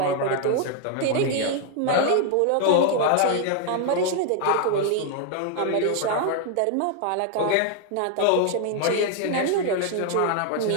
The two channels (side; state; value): both; different; correlation 0.00